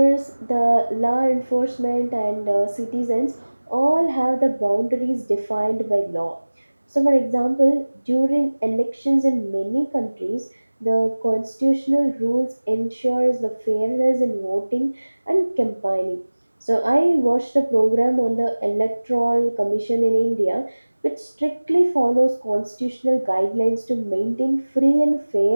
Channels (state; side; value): inverted; both; correlation -1.00